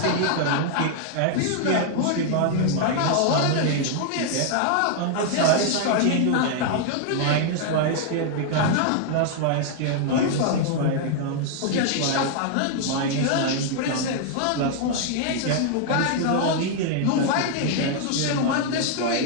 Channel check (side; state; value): both; different; correlation 0.00